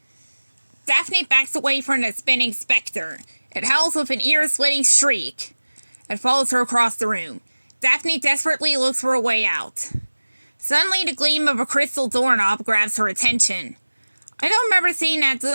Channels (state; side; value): inverted; both; correlation -1.00